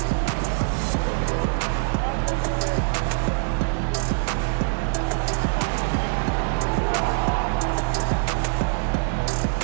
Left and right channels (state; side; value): silent; left; digital silence